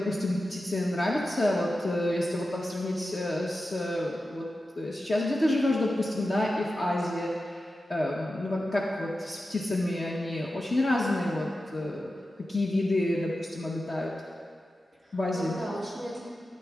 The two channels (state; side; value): normal; both; correlation 0.92